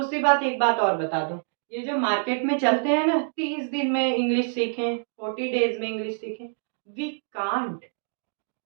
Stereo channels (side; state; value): left; silent; digital silence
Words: बात, एक बात और बता दूं, ये जो मार्केट में चलते हैं ना 30 दिन में इंग्लिश सीखें, 40 डेज में इंग्लिश सीखें, we can't,